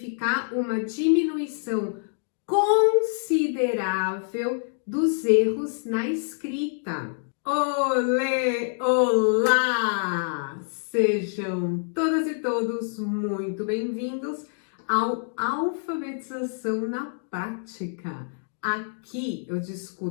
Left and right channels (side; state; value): right; silent; digital silence